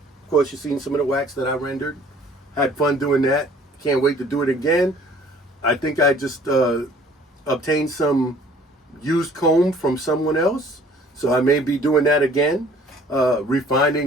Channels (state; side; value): normal; both; correlation 0.54